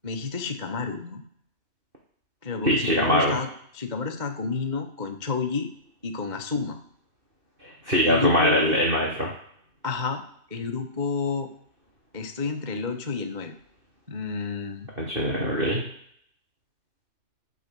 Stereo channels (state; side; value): late; left; 2.2 ms